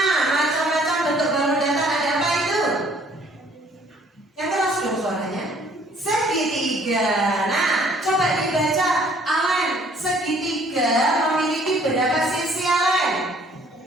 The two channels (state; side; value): normal; both; correlation 0.59